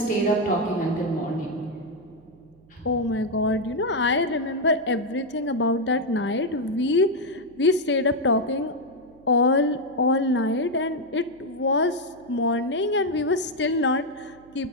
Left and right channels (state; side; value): noise; right; hum, 28 dB below the sound